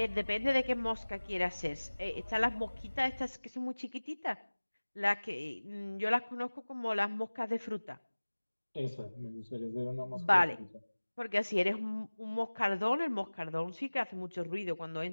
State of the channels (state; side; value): inverted; both; correlation -1.00